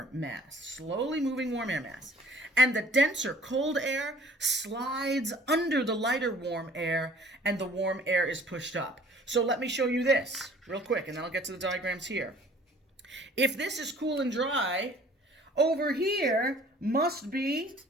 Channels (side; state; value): both; normal; correlation 0.52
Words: mass. Slowly moving warm air mass. And the denser cold air slides under the lighter warm air, and the warm air is pushed up. So let me show you this real quick, and then I'll get to the diagrams here. If this is cool and dry, over here must be